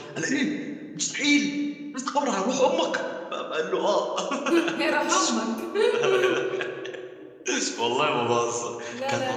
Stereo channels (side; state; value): both; identical; correlation 1.00